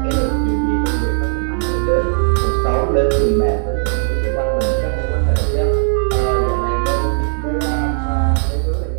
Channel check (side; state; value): left; silent; digital silence